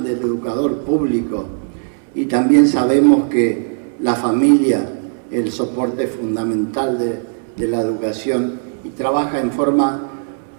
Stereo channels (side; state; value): left; silent; 67 dB below the other